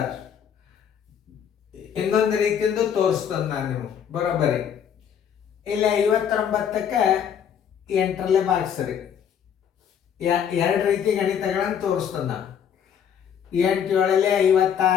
ಇನ್ನೊಂದು ರೀತಿಯಿಂದ ತೋರಿಸ್ತೇನೆ ನಾನು ನೀವು ಬರೋಬ್ಬರಿ. ಇಲ್ಲಿ 59ಕ್ಕೆ 8ರಲ್ಲೇ ಭಾಗಿಸ್ರಿ. ಎರಡು ರೀತಿ ಗಣಿತಗಳನ್ನು ತೋರಿಸ್ತೇನೆ ನಾನು. 8 7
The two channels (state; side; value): quieter; right; 8.3 dB